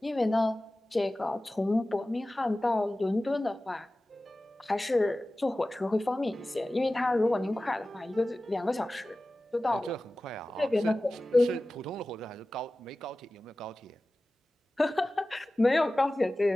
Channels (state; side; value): normal; both; correlation 0.96